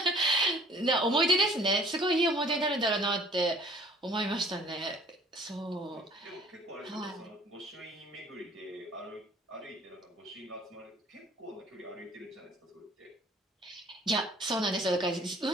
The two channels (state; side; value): normal; both; correlation 0.53